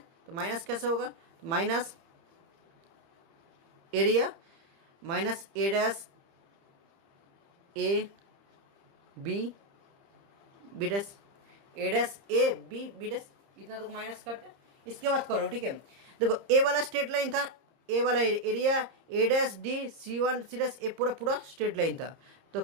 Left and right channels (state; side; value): late; left; 30 ms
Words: तो माइनस कैसे होगा, तो minus area minus A dash A B dash, A dash A B dash, इतना तो माइनस करते हैं। इसके बाद करो। ठीक है, देखो ए वाला स्ट्रेट लाइन था, ए वाला area A dash D C1 C dash, A पूरा स्ट्रेट लाइन था, तो